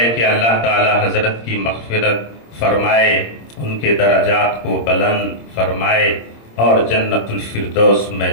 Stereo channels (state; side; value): late; right; 26 ms